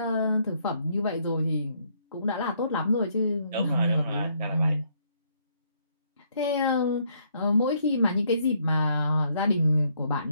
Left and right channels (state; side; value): inverted; both; correlation -0.70